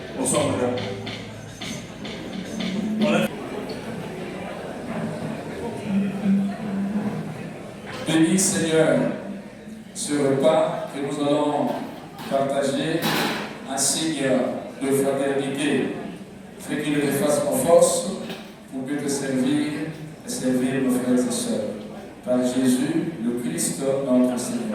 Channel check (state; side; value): identical; both; correlation 1.00